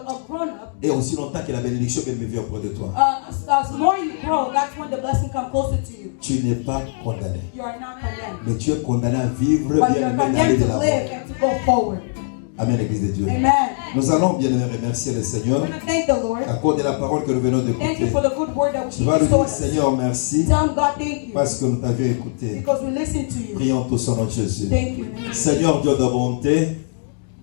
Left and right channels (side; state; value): right; silent; digital silence